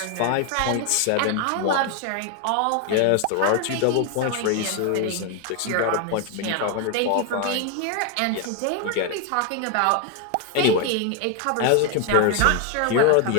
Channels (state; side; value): different; both; correlation 0.01